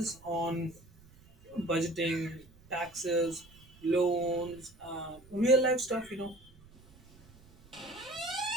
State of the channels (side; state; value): right; noise; rumble, 25 dB below the sound